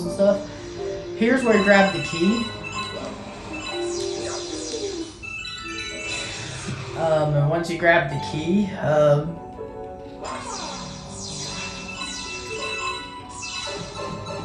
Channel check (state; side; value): identical; both; correlation 1.00